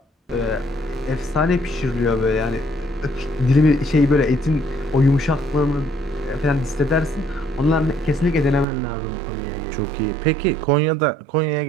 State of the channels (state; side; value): drops out; left; at 8.7 s